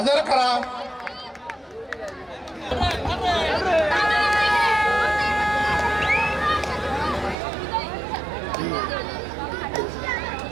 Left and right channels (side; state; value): left; drops out; at 7.4 s